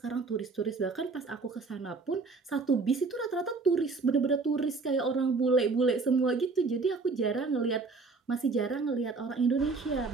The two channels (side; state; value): left; quieter; 4.1 dB